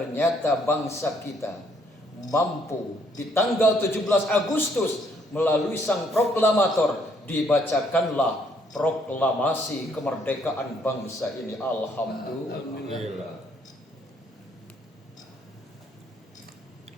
bangsa kita mampu di tanggal 17 Agustus melalui sang proklamator dibacakanlah proklamasi kemerdekaan bangsa ini. Alhamdulillah.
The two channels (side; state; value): both; normal; correlation 0.68